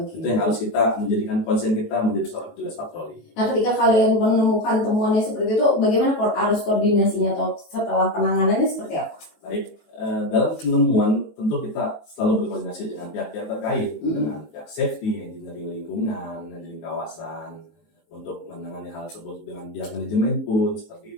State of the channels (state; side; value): late; right; 19 ms